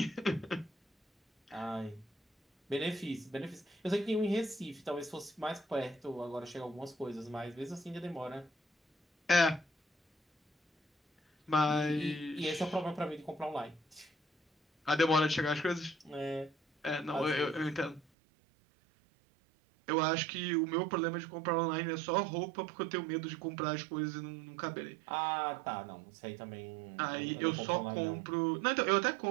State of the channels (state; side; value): drops out; left; at 18.0 s